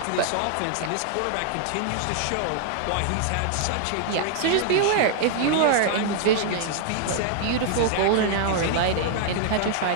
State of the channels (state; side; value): different; both; correlation 0.00